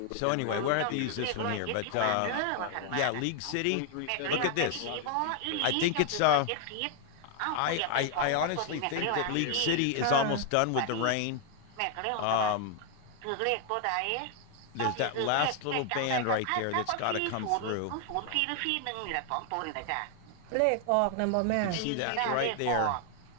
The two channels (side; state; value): both; different; correlation 0.00